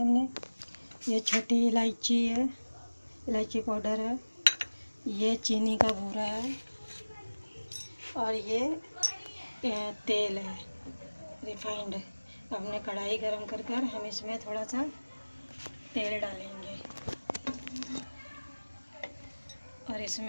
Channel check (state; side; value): inverted; both; correlation -1.00